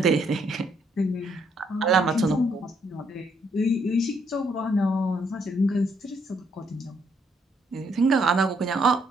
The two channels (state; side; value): normal; both; correlation 0.72